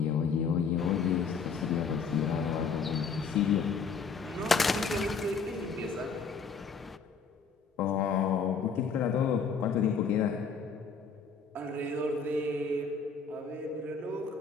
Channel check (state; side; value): quieter; right; 5.3 dB